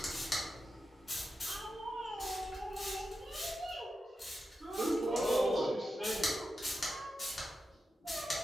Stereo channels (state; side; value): normal; both; correlation 0.89